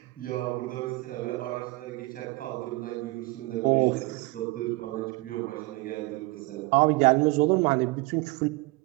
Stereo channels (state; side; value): quieter; left; 23.3 dB